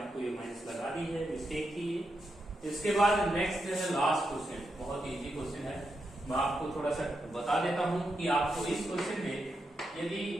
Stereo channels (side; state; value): both; normal; correlation 0.85